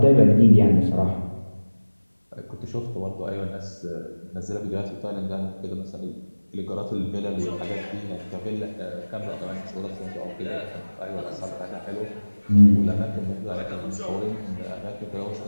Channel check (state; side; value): inverted; both; correlation -1.00